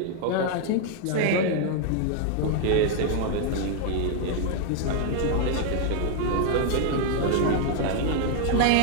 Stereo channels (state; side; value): different; both; correlation 0.00